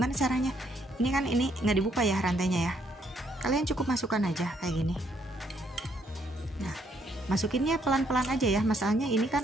caranya? Ini kan ini nggak dibuka ya rantainya ya. Kalian cukup masukkan aja kayak gini. Nah, masukinnya pelan-pelan aja ya. Masalahnya ini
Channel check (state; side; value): normal; both; correlation 0.71